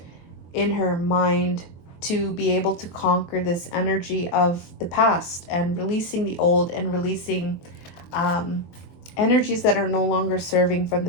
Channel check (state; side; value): late; right; 23 ms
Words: in her mind to be able to conquer this energy of the past, and releasing the old, and releasing energies that are no longer serving from